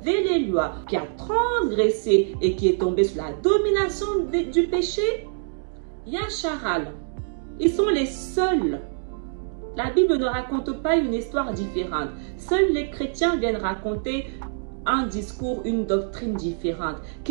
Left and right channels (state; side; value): silent; left; digital silence